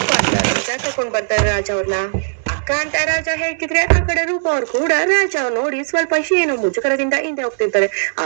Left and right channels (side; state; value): left; silent; digital silence